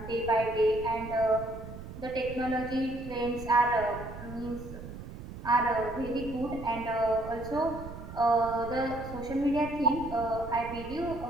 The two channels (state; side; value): noise; right; rumble, 12 dB below the sound